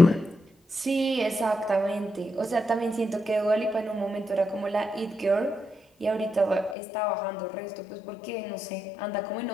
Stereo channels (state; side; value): drops out; right; at 6.8 s